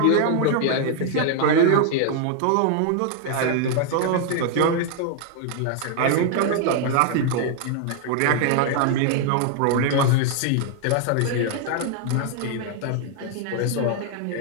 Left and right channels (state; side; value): different; both; correlation 0.00